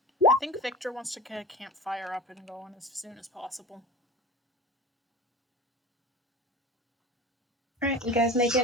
I think Victor wants to get a campfire up and going as soon as possible. All right, you guys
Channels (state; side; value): normal; both; correlation 0.34